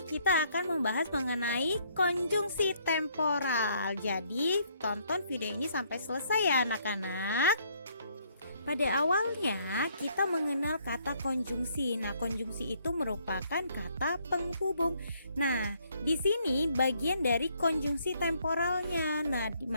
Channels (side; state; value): both; inverted; correlation -0.67